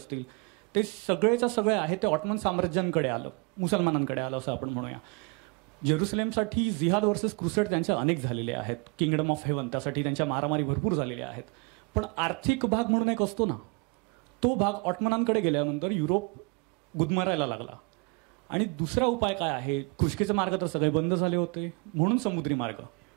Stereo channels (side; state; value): left; quieter; 31.7 dB